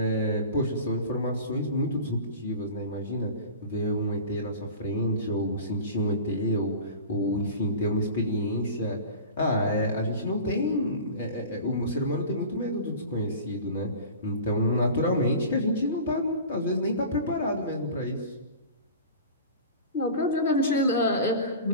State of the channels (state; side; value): inverted; both; correlation -0.37